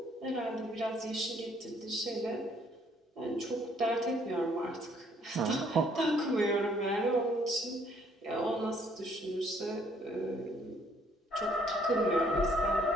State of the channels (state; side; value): normal; both; correlation 0.64